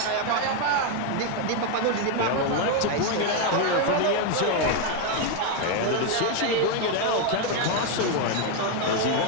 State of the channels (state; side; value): different; both; correlation 0.01